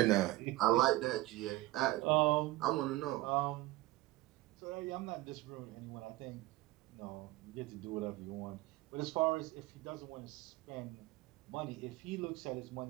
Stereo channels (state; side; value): quieter; left; 18.3 dB